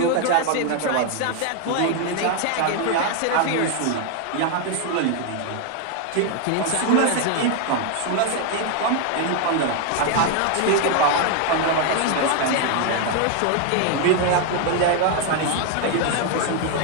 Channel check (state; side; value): different; both; correlation 0.01